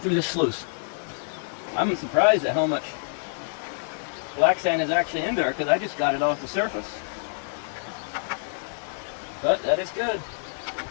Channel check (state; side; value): silent; right; digital silence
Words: this sluice. I'm surprised at how much black sand is actually in there, because I just got it off the surface. But that is good.